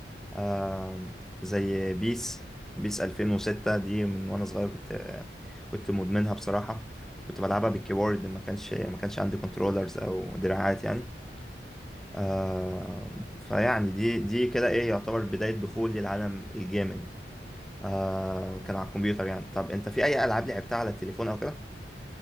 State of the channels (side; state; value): both; normal; correlation 0.98